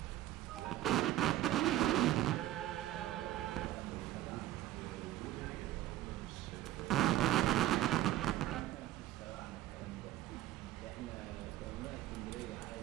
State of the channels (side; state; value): left; quieter; 14.2 dB